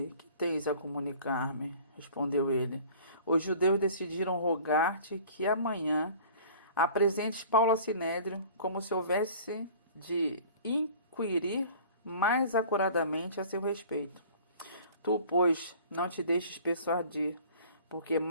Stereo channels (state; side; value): inverted; both; correlation -0.46